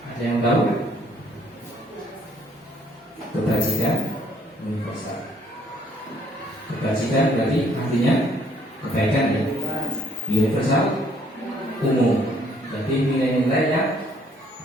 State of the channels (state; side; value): normal; both; correlation 0.64